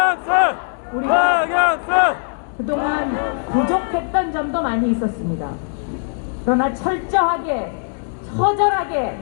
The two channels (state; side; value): silent; right; digital silence